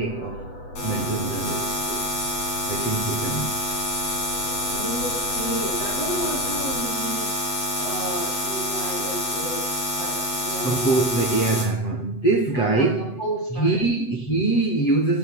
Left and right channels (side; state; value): right; late; 8.0 ms